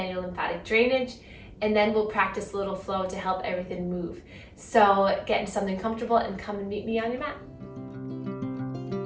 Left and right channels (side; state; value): both; identical; correlation 1.00